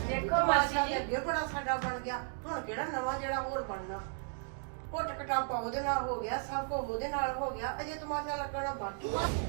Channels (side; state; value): left; silent; 55 dB below the other